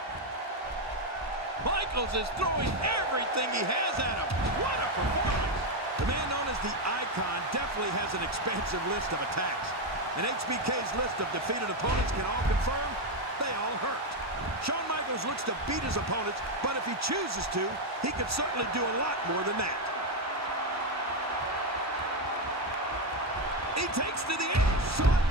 Michaels is throwing everything he has at him. What a performance. The man known as the Icon definitely has an expansive list of attacks. And HBK's list of defeated opponents can all confirm they all hurt. Shawn Michaels looks to beat his opponents, but if he chooses to, he could certainly do a lot more than that. He takes to the edge. Shawn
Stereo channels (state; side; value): normal; both; correlation 0.07